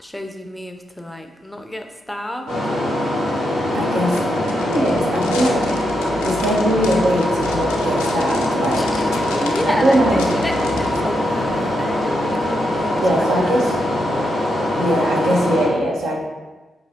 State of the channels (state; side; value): normal; both; correlation 0.82